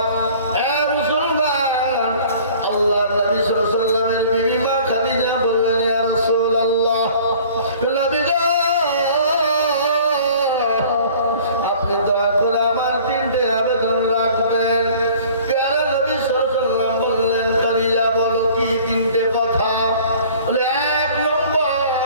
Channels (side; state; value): both; inverted; correlation -0.50